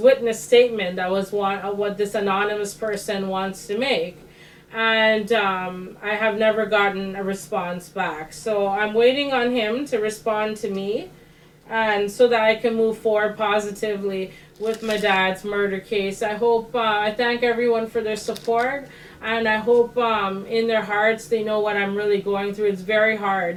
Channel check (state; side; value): identical; both; correlation 1.00